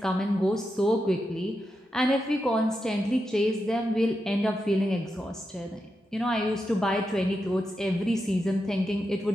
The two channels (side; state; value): both; normal; correlation 0.87